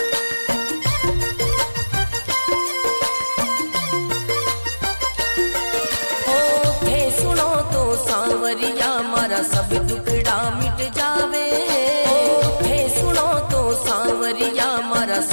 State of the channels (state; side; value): inverted; both; correlation -1.00